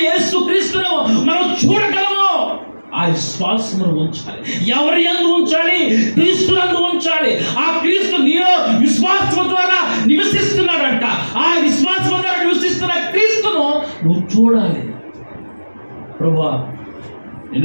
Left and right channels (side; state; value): both; inverted; correlation -1.00